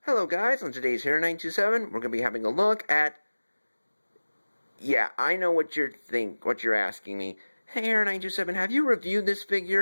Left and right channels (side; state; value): both; inverted; correlation -1.00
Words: Hello guys, on today's Harri927, we're going to be having a look at... Yeah, I know what you're asking me. Hey Harri927, have you reviewed this